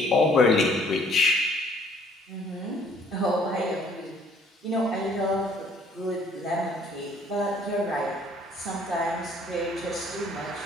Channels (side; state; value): both; normal; correlation 0.59